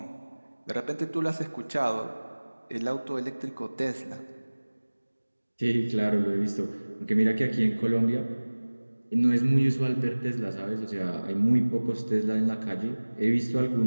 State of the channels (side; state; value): both; inverted; correlation -1.00